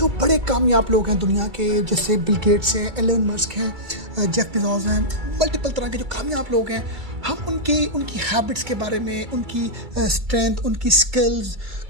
बड़े कामयाब लोग हैं दुनिया के, जैसे बिल गेट्स हैं, एलन मस्क हैं, जेफ बेजोस हैं, मल्टीपल तरह के जो कामयाब लोग हैं, हम उनकी हैबिट्स के बारे में, उनकी स्ट्रेंथ, उनकी स्किल्स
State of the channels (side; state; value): left; late; 2.3 ms